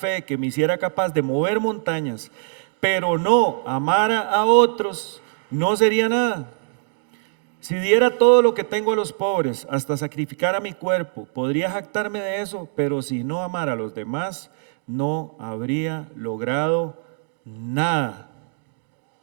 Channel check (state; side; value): silent; left; 63 dB below the other